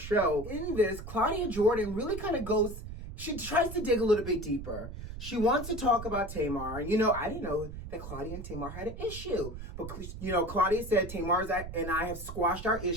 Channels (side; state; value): right; noise; rumble, 10 dB below the sound